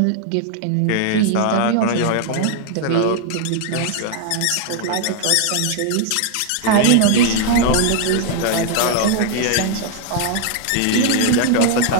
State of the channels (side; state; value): both; different; correlation 0.00